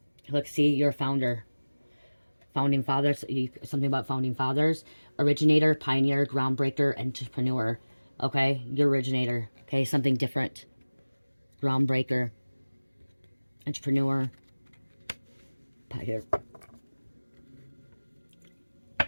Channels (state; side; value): inverted; both; correlation -1.00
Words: Look, see, you're a founder. Founding fathers, something about founding fathers. Originator, pioneer, groundbreaker, entrepreneur. Okay? You're originator. Okay? Something different. Groundbreaker. Entrepreneur. Pioneer.